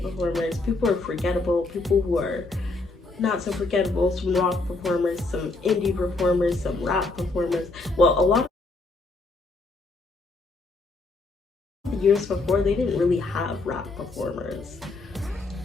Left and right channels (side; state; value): right; quieter; 3.4 dB